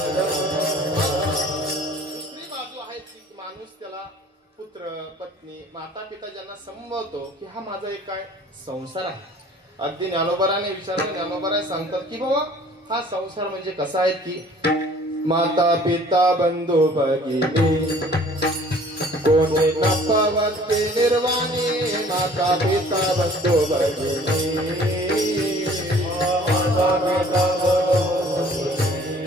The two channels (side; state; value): both; normal; correlation 0.52